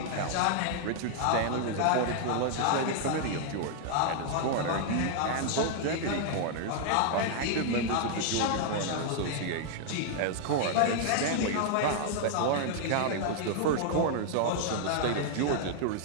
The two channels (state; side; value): different; both; correlation 0.00